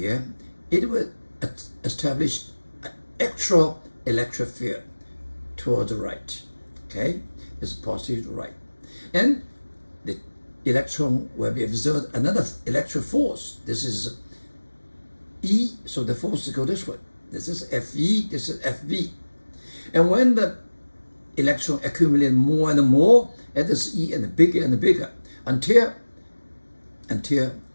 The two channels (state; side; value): inverted; both; correlation -1.00